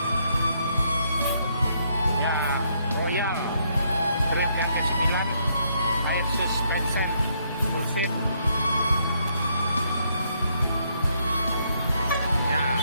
Ya, Royal trip yang ke-9, air suspension full set. Ya,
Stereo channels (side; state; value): both; inverted; correlation -0.73